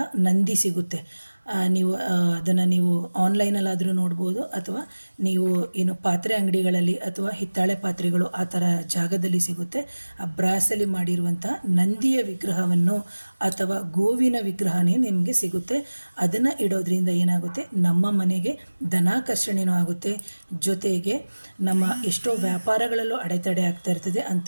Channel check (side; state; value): both; inverted; correlation -1.00